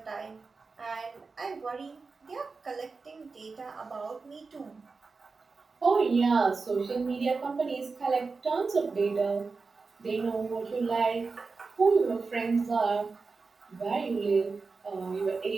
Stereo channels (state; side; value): quieter; left; 4.3 dB